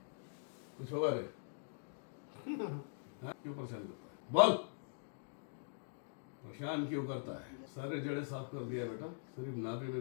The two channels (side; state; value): right; silent; digital silence